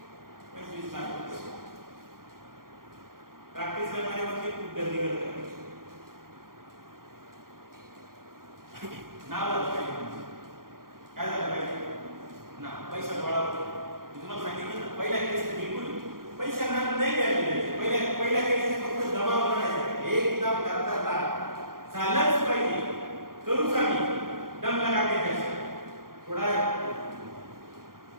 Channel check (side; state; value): left; late; 0.92 ms